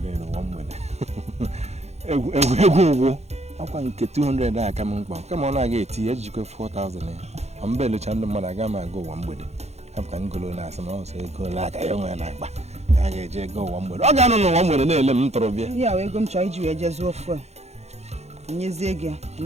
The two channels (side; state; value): left; late; 0.31 ms